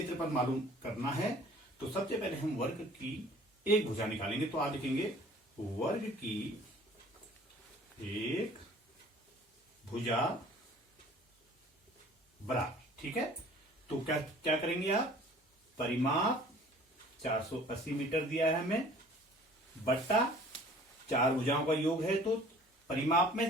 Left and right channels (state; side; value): normal; both; correlation 0.50